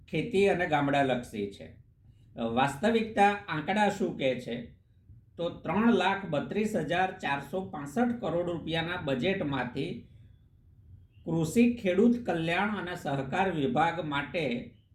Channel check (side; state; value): both; identical; correlation 1.00